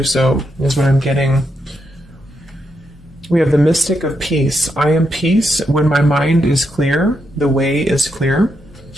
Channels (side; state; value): both; normal; correlation 0.82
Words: so, is what I'm getting. We have the Mystic of Peace. I am peace. When my mind is clear, the way is clear.